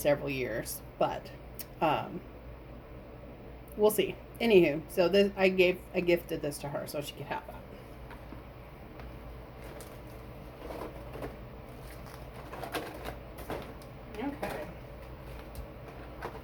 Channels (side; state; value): both; identical; correlation 1.00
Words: years, but we'll see. Anywho, so this I gifted this to her so she could have that. Okay.